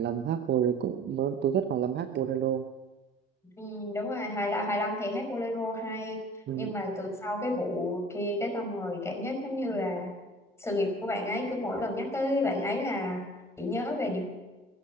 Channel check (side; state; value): both; normal; correlation 0.45